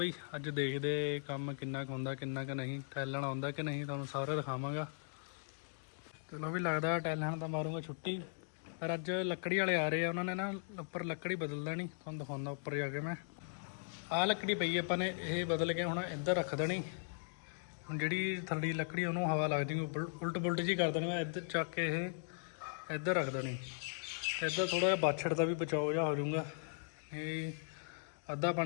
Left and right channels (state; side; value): silent; right; digital silence